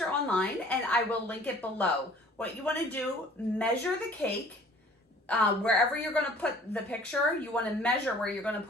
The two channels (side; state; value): both; normal; correlation 0.52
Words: online and I will link it below. What you want to do, measure the cake. Wherever you're going to put the picture, you want to measure where you're going to